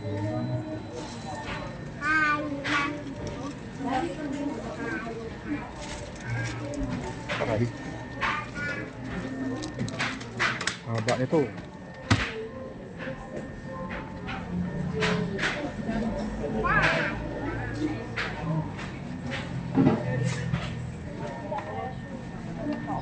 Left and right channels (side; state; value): both; identical; correlation 1.00